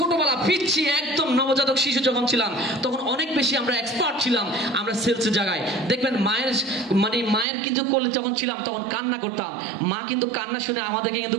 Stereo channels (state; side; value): drops out; left; at 7.5 s